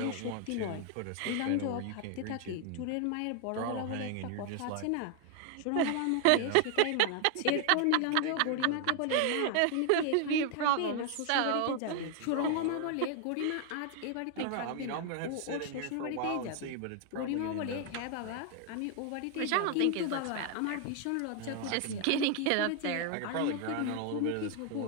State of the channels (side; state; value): both; different; correlation 0.00